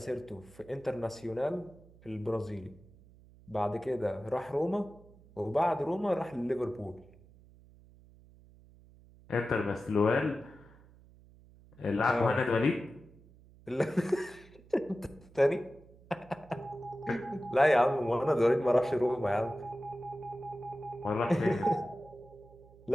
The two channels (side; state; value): right; noise; hum, 24 dB below the sound